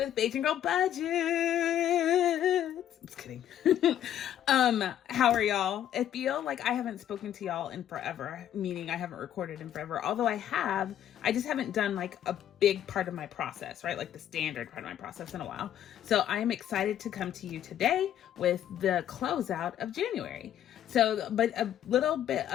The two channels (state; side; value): quieter; right; 10.9 dB